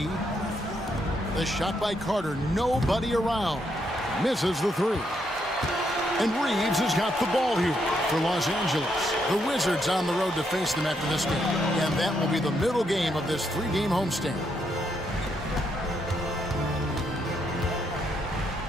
The shot by Carter. Nobody around. Misses the 3. And Reeves has got the ball here for Los Angeles. The Wizards on the road to face them after this game. And that will be the middle game of this 3-game homestand.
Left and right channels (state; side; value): normal; both; correlation 0.77